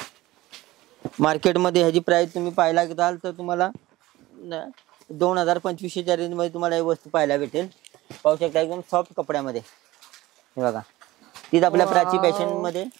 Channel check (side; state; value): left; quieter; 17.9 dB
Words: मार्केटमध्ये ह्याची प्राइस तुम्ही पाहायला गेलाल तर तुम्हाला 2000-2500च्या रेंज मध्ये तुम्हाला ही वस्तू पाहायला भेटेल. पाहू शकता एकदम सॉफ्ट कपड्यामध्ये. हे बघा, तीच आपल्या प्राची फॅशन मध्ये